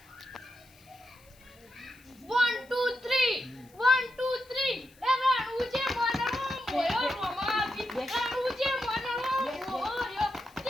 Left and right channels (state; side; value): noise; left; hiss, 28 dB below the sound